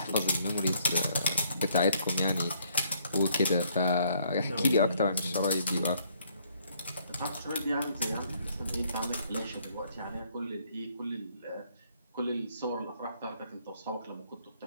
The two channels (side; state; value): both; inverted; correlation -0.67